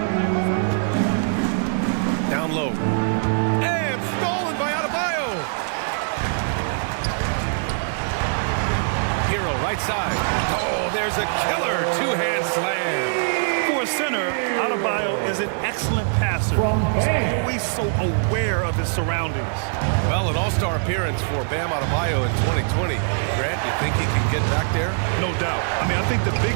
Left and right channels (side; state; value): left; silent; digital silence